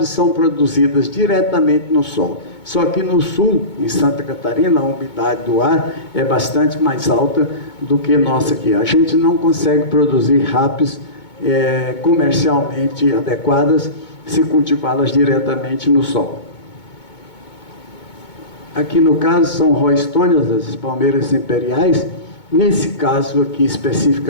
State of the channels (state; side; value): late; right; 2.2 ms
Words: são produzidas diretamente no sol. Só que no sul, em Santa Catarina, a umidade do ar é bastante mais alta do que nossa aqui. A gente não consegue produzir rapis comercialmente adequadas se cultivá-las diretamente no sol. Aqui no caso são roystonias, as palmeiras imperiais. Nesse caso aqui